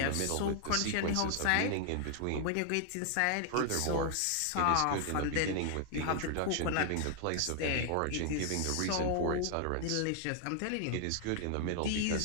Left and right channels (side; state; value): both; different; correlation 0.00